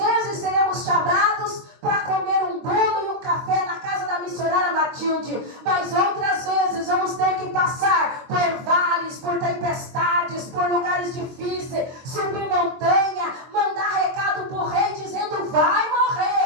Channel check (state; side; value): late; left; 23 ms